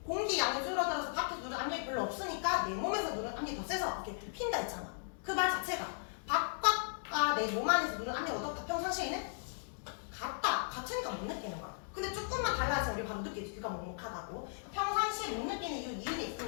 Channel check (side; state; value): right; silent; digital silence